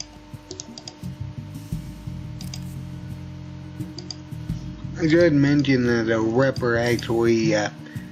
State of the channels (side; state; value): both; identical; correlation 1.00